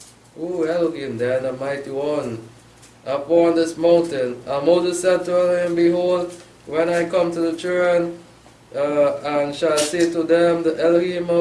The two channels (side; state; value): both; identical; correlation 1.00